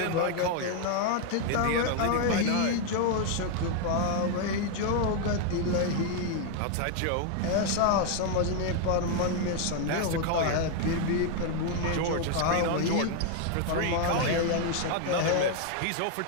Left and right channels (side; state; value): both; different; correlation 0.00